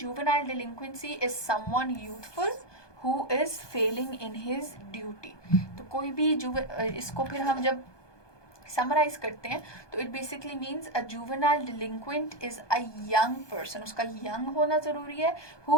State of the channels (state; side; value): late; right; 1.2 ms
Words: juvenile delinquency is someone youthful who is failing in his duty. तो कोई भी इसको फिर हम जब समराइज करते हैं तो it basically means a juvenile delinquent is a young person, उसका यंग होना ज़रूरी है,